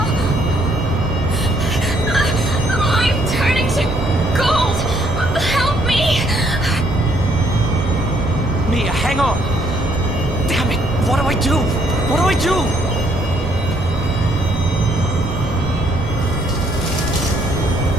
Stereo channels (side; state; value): both; normal; correlation 0.68